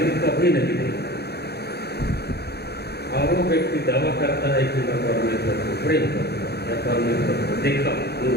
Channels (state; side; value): late; right; 0.47 ms